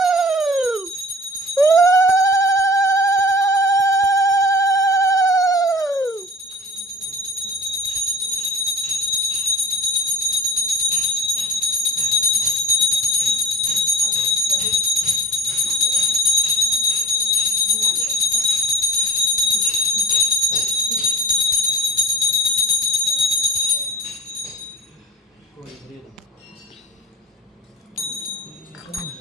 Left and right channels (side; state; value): both; normal; correlation 0.41